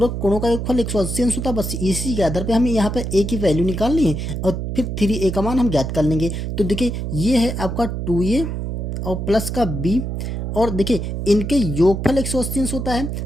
कोणों का योगफल 180 अंश होता है। बस इसी के आधार पे हमें यहाँ पे ए की वैल्यू निकालनी है और फिर 3a का मान हम ज्ञात कर लेंगे। तो देखिए, ये है आपका 2a और प्लस का b, और देखिए इनके योगफल 180 अंश होता है,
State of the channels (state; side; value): noise; right; hum, 4 dB below the sound